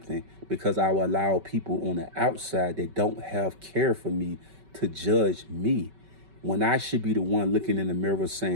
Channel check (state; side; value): late; left; 5.2 ms